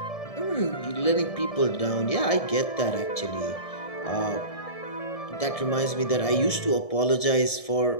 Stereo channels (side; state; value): right; late; 1.7 ms